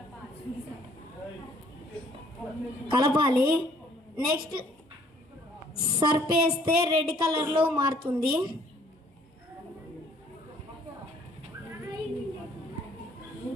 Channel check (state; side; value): normal; both; correlation 0.60